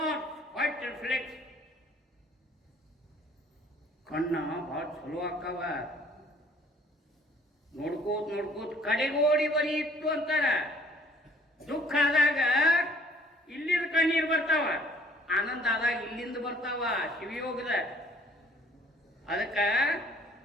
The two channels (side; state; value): both; normal; correlation 0.57